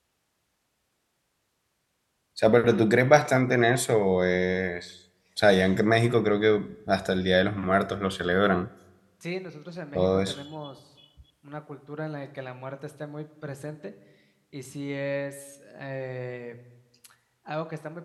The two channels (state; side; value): identical; both; correlation 1.00